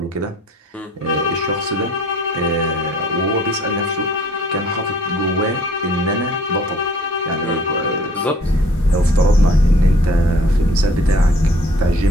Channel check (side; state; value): both; normal; correlation 0.55